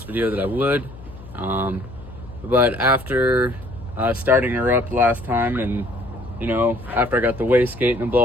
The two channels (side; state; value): left; noise; hum, 17 dB below the sound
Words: video that I would. But after starting her up last time and, after I got the wastegate and the